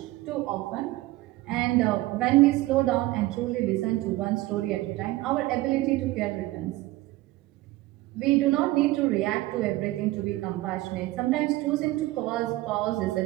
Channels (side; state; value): left; quieter; 18.2 dB